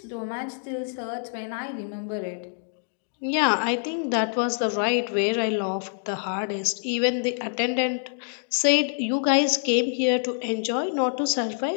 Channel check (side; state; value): right; silent; digital silence